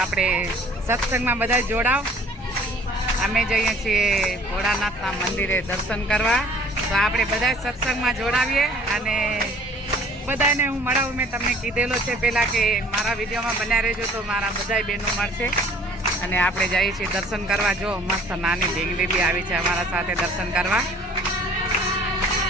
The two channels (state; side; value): normal; both; correlation 0.53